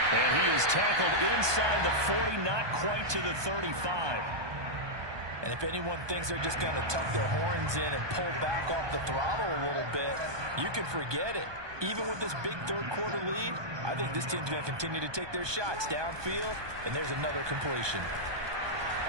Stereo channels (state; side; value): late; left; 1.2 ms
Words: And he is tackled inside the 40, not quite to the 35. And if anyone thinks they're just going to tuck their horns in and pull back off the throttle a little bit, you can forget it. Even with this big third-quarter lead, I think this team's going to continue to take their shots downfield, and there's another completion.